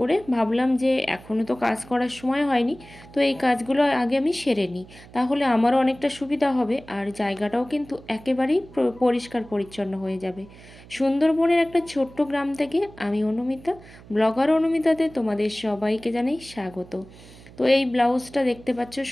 ভাবলাম যে এখনও তো কাজ করার সময় হয়নি, তো এই কাজগুলো আগে আমি সেরে নিই, তাহলে আমারও অনেকটা সুবিধা হবে আর জায়গাটাও কিন্তু একেবারেই পরিষ্কার পরিচ্ছন্ন হয়ে যাবে। সুন্দরবনের একটা ছোট্ট গ্রাম থেকে আমি অনুমিতা, ব্লগার অনুমিতাতে তোমাদের সবাইকে জানাই স্বাগত। তো এই ব্লাউজটা দেখতে পাচ্ছ,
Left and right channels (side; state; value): right; noise; hum, 21 dB below the sound